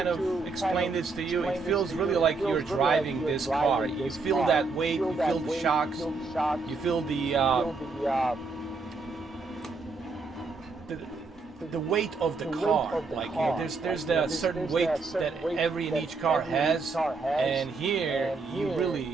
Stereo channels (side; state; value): left; quieter; 4.1 dB